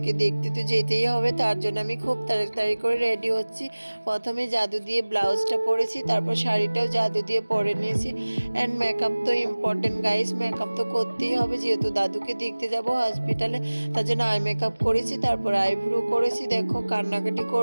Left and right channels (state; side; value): inverted; both; correlation -1.00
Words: দেখতে তো যেতেই হবে। তার জন্য আমি খুব তাড়াতাড়ি করে রেডি হচ্ছি। প্রথমে জাদু দিয়ে ব্লাউজটা পরেছি, তারপর শাড়িটাও জাদু দিয়ে পরে নিয়েছি। অ্যান্ড মেকআপ তো ইম্পর্টেন্ট গাইস, মেকআপ তো করতেই হবে যেহেতু দাদুকে দেখতে যাব হসপিটালে। তার জন্য আই মেকআপ করেছি, তারপর আইব্রো করেছি। দেখো কান্নাকাটি